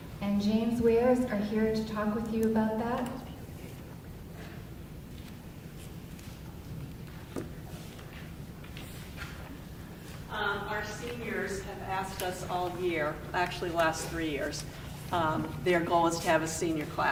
and James Wares are here to talk with you about that. Our seniors have asked us all year, actually last 3 years, their goal is to have a senior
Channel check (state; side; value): identical; both; correlation 1.00